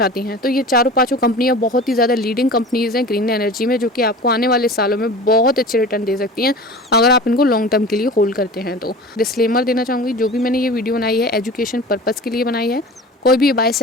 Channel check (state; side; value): normal; both; correlation 0.37